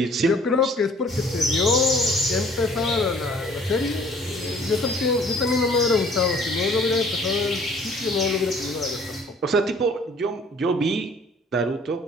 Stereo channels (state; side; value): normal; both; correlation 0.54